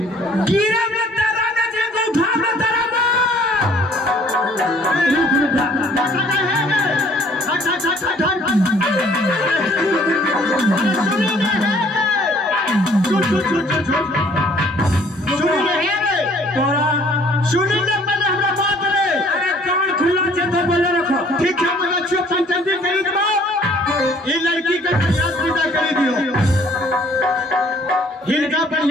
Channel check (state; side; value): normal; both; correlation 0.57